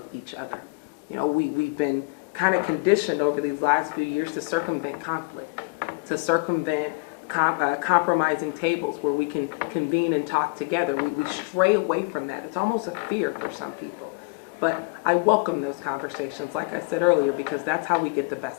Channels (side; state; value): right; quieter; 29.7 dB